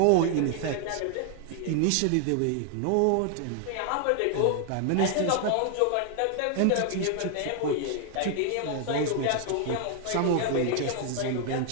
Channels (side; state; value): both; different; correlation 0.00